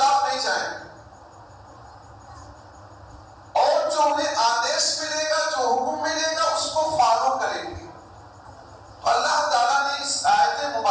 نہیں جائیں گے، اور جو انہیں آدیش ملے گا، جو حکم ملے گا، اس کو فالو کریں گے. اللہ تعالیٰ نے اس آیت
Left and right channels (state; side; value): identical; both; correlation 1.00